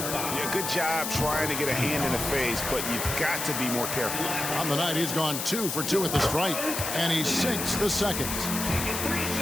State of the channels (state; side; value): noise; left; hiss, 3 dB below the sound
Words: good job trying to get a hand in the face, but you've got to be more careful. On the night, he's gone 2 for 2 at the stripe, and he sinks the second.